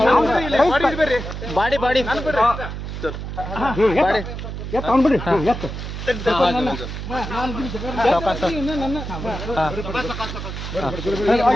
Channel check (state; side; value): noise; right; hum, 7 dB below the sound